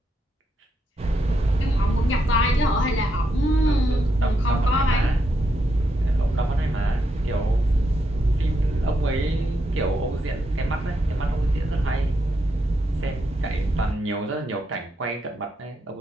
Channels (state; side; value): normal; both; correlation 0.81